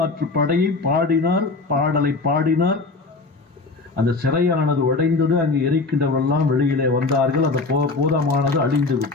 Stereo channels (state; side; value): quieter; right; 3.7 dB